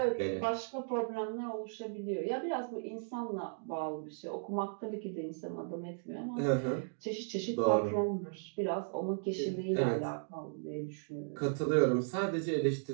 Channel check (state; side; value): silent; left; digital silence